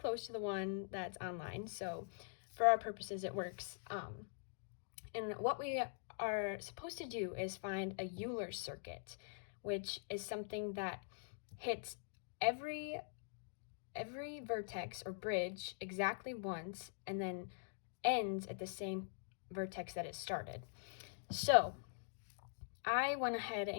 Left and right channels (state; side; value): silent; right; digital silence